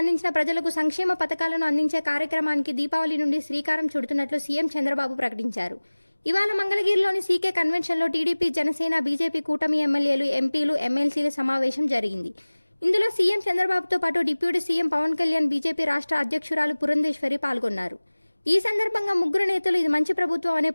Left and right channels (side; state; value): both; inverted; correlation -1.00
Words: ప్రజలకు సంక్షేమ పథకాలను అందించే కార్యక్రమానికి దీపావళి నుండి శ్రీకారం చుడుతున్నట్లు సీఎం చంద్రబాబు ప్రకటించారు. ఇవాళ మంగళగిరిలోని సీకే కన్వెన్షన్లో టీడీపీ, జనసేన, బీజేపీ కూటమి ఎమ్మెల్యేలు, ఎంపీలు, ఎమ్మెల్సీల సమావేశం జరిగింది. ఇందులో సీఎం చంద్రబాబుతో పాటు deputy CM Pawan Kalyan, BJP రాష్ట్ర అధ్యక్షురాలు పురంధేశ్వరి పాల్గొన్నారు. ఈ సందర్భంగా ముగ్గురు నేతలు ఇది మంచి ప్రభుత్వం అనే